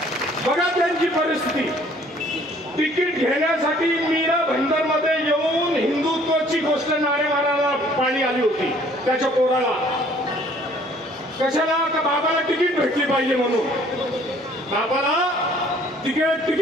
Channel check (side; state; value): both; normal; correlation 0.58